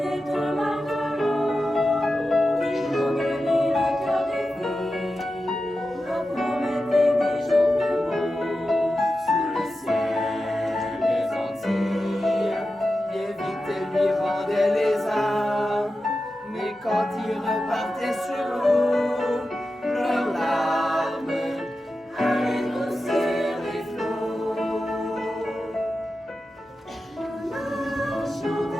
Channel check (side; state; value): both; normal; correlation 0.92